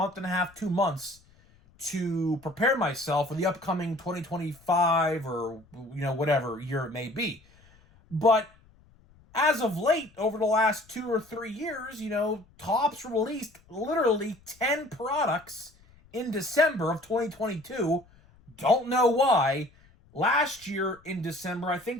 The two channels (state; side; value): noise; left; rumble, 29 dB below the sound